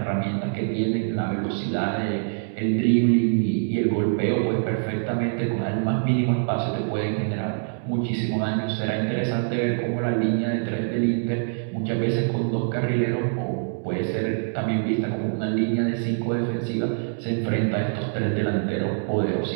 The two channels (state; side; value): silent; left; digital silence